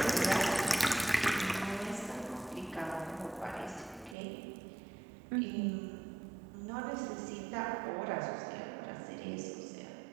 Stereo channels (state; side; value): drops out; left; at 4.2 s